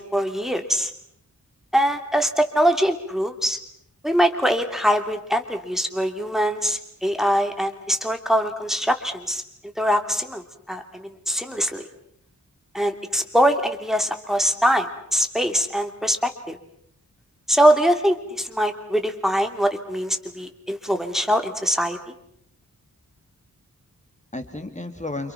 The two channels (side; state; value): both; normal; correlation 0.80